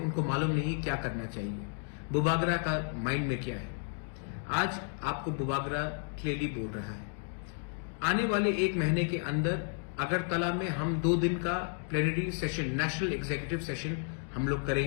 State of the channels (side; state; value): right; silent; 56 dB below the other